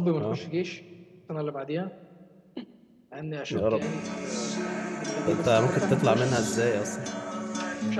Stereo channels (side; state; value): both; identical; correlation 1.00